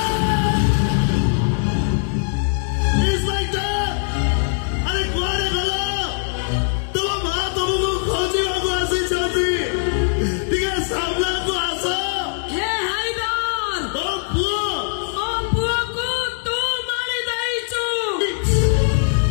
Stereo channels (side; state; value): right; silent; digital silence